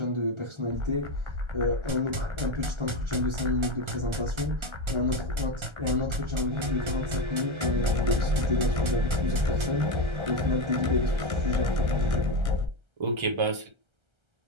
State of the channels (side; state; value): left; late; 1.3 ms